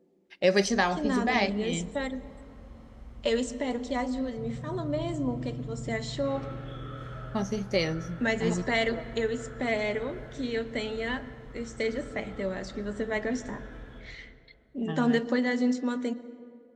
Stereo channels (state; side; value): identical; both; correlation 1.00